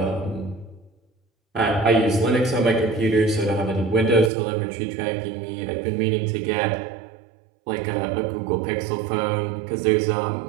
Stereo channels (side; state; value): left; drops out; at 4.3 s